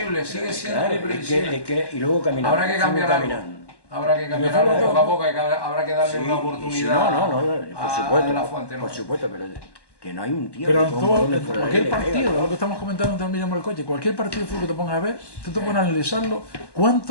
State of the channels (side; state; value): right; late; 1.1 ms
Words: sigue siendo muy previsible. Y luego caminar. Habrá que cambiar algo. Habrá que cambiar algo poco a poco, habrá que darle una oportunidad por supuesto, a la fuente. Por supuesto, pero que no hay un tío pero que cualquier partido, lo que estamos comentando también en el coche, cualquier partido de fútbol que te pongas a ver, tú te pones a analizarlo,